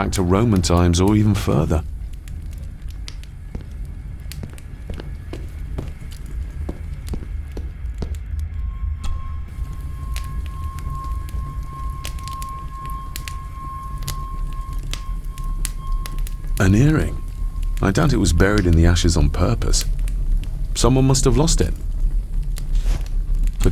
to Roman times or even further. An earring? I doubt it was buried in the ashes on purpose. Someone must have lost it. The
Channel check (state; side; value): identical; both; correlation 1.00